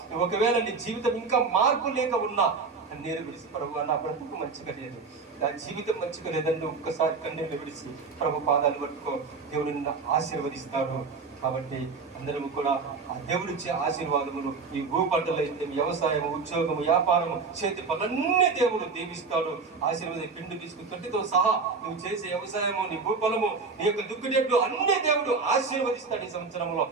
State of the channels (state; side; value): quieter; left; 4.6 dB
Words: ఒకవేళ నీ జీవితం ఇంకా మార్పు లేక ఉన్నా కన్నీరు విడిచి ప్రభు నా బ్రతుకు మంచిగా లేదు, నా జీవితం మంచిగా లేదంటే ఒక్కసారి కన్నీరు విడిచి ప్రభు పాదాలు పట్టుకో, దేవుడు నిన్ను ఆశీర్వదిస్తాడు. కాబట్టి అందరము కూడా ఆ దేవుడిచ్చే ఆశీర్వాదములు ఈ భూపంటలు అయితే వ్యవసాయము, ఉద్యోగము, వ్యాపారము, చేతి పనులన్నీ దేవుడు దీవిస్తాడు. ఆశీర్వాదం పిండి తీసుకు తొట్టితో సహా నువ్వు చేసే వ్యవసాయము, నీ భూఫలము, నీ యొక్క దుక్కుడెట్లు అన్ని దేవుడు ఆశీర్వదిస్తాడు. ఈ సంవత్సరంలో